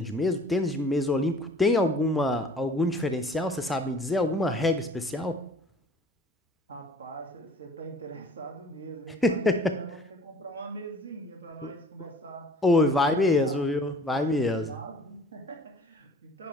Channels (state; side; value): normal; both; correlation 0.49